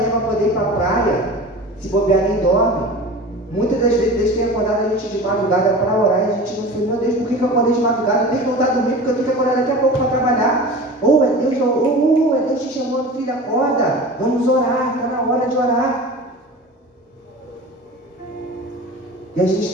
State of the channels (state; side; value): normal; both; correlation 0.35